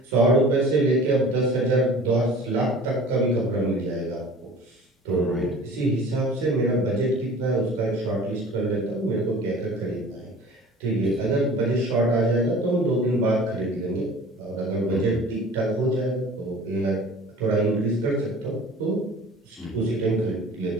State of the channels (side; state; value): both; normal; correlation 0.44